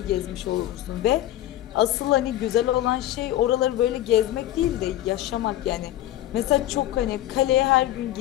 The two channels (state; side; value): quieter; right; 13.9 dB